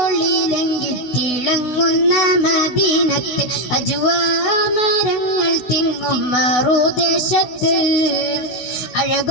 ഒളിയിലെങ്കി തിളങ്ങുന്ന മദീനത്ത് അജ്വാമരങ്ങൾ തിങ്ങും മറുദേശത്ത്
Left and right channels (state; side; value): late; right; 16 ms